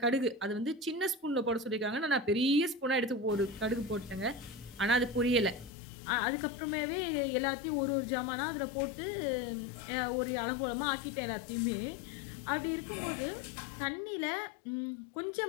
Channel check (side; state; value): right; drops out; at 5.7 s